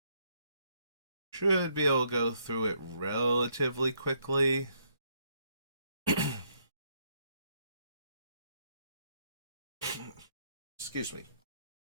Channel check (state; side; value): inverted; both; correlation -0.72